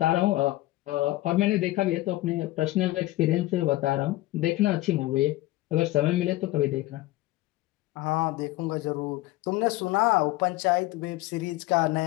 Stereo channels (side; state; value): right; quieter; 17.7 dB